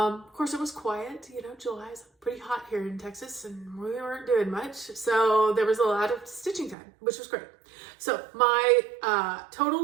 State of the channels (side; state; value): left; drops out; at 6.8 s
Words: course, it was quiet. You know, July is pretty hot here in Texas and we weren't doing much. So there was a lot of stitching time, which was great. So my